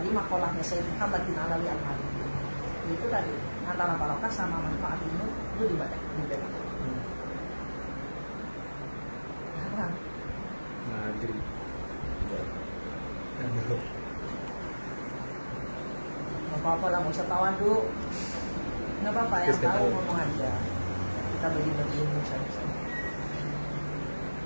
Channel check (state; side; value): inverted; both; correlation -1.00